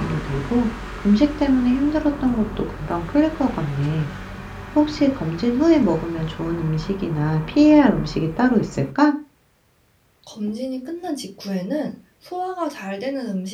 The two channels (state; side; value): identical; both; correlation 1.00